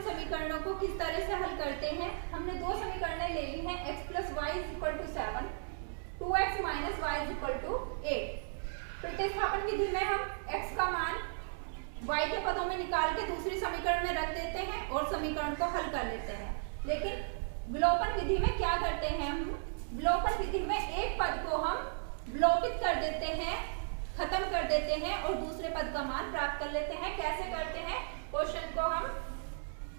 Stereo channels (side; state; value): left; silent; digital silence